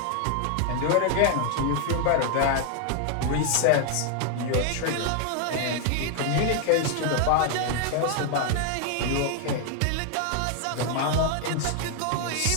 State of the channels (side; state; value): both; different; correlation 0.00